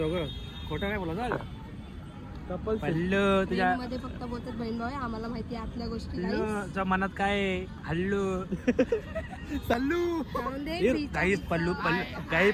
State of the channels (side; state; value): both; identical; correlation 1.00